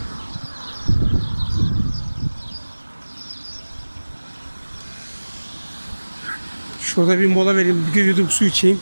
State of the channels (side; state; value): both; inverted; correlation -1.00